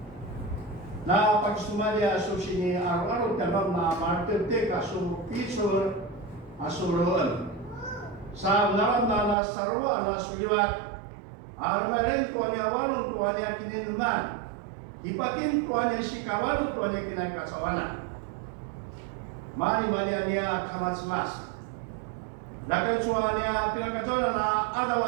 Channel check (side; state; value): left; drops out; at 9.3 s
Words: Na pagsumalia susini araw-araw tanong na martirte kaso pisor asuroon. Sa naram na sarwa na suliwat armaren tuanya walong tuanya kininuman. Ipakin tuanya si kawalo tuanya kinakasawana. Mani-mani niya kamatsimas. Nakatsuanya pinakajola na